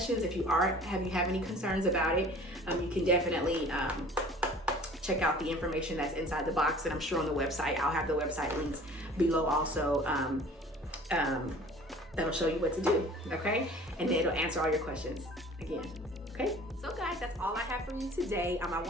if you have any concerns about it, you can definitely check out the information that's inside the box, and I'm sure on the website, I'll have the website links below also. That'll show you what to do, okay? And then it'll answer all your questions again, okay? So guys, that's all I have for you today. I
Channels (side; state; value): both; normal; correlation 0.47